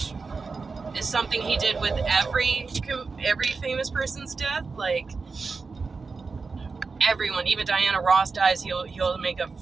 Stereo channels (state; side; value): quieter; left; 4.5 dB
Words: is something he did with every famous person's death. Like, everyone, even Diana Ross dies, he'll make a